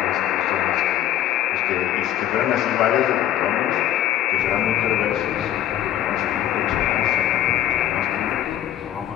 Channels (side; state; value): right; quieter; 12.0 dB